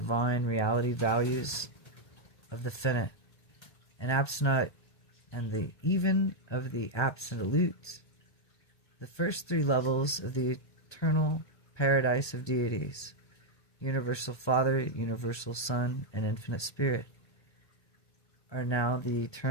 reality values of the finite and absolute and the even of the absolute, the first three levels of the eternal paradise of deities, universal Father, universal Son, and infinite Spirit, are now the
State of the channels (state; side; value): late; right; 1.3 ms